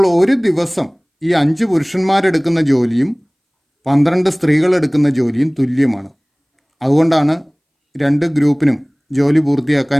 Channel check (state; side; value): identical; both; correlation 1.00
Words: ഒരു ദിവസം ഈ 5 പുരുഷന്മാരെടുക്കുന്ന ജോലിയും 12 സ്ത്രീകൾ എടുക്കുന്ന ജോലിയും തുല്യമാണ്. അതുകൊണ്ടാണ് 2 ഗ്രൂപ്പിനും ജോലി പൂർത്തിയാക്കാൻ